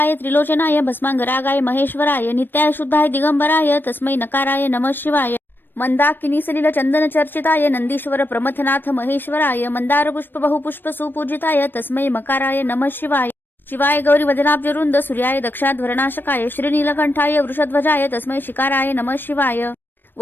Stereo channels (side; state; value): right; late; 0.095 ms